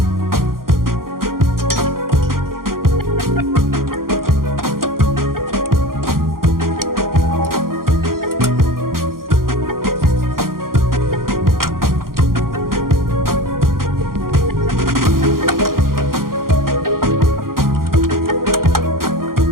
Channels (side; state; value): left; late; 0.92 ms